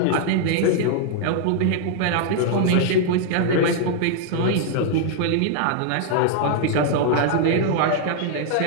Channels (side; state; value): both; different; correlation 0.00